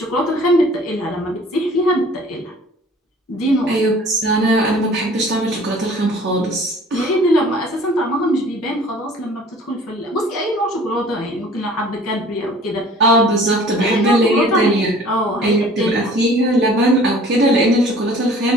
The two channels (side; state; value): both; normal; correlation 0.50